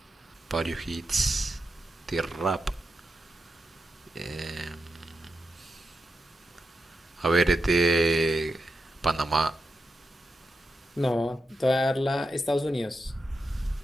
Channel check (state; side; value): normal; both; correlation 0.88